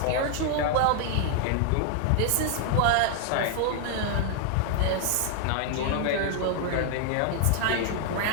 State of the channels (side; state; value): both; different; correlation 0.00